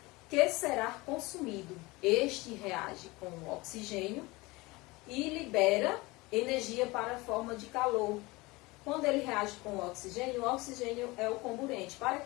que será consumido. Este reage com o oxigênio e libera energia para a forma de calor. Quando ele reage com o oxigênio é o comburente. Para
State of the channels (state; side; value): quieter; right; 22.7 dB